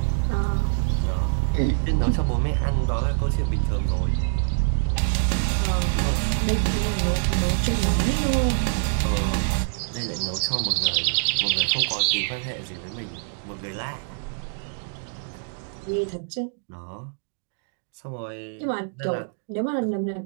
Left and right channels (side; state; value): left; silent; digital silence